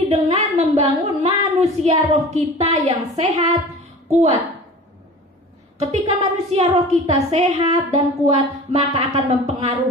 dengan membangun manusia roh kita yang sehat, kuat. Ketika manusia roh kita sehat dan kuat, maka akan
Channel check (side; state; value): both; normal; correlation 0.39